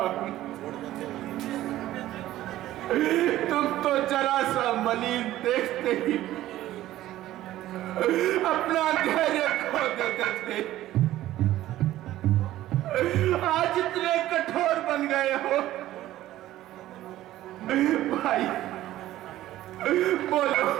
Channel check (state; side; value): quieter; left; 14.5 dB